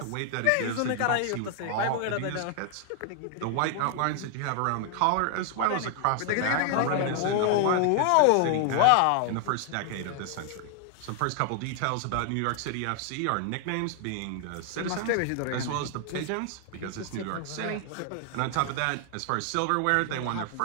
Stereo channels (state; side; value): different; both; correlation 0.00